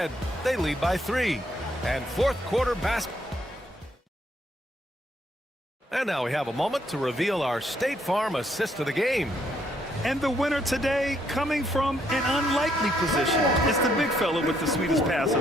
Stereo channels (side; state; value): both; normal; correlation 0.72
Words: They lead by 3. And fourth quarter basketball. And now we have a moment to reveal our State Farm assist of the game. And the winner today coming from an unlikely position. It's the big fella with the sweetest pass